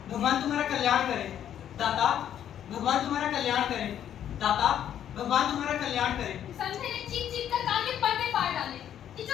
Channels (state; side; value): quieter; right; 10.2 dB